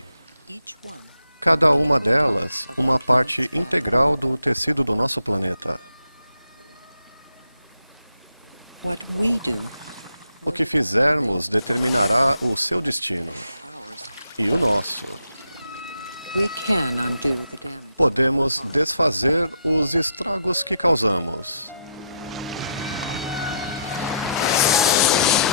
Cada uma delas, uma parte integral do tecido do nosso planeta. O que fizermos determinará o seu destino e o nosso. Podemos desfazer os estragos que causamos.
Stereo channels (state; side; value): inverted; both; correlation -0.75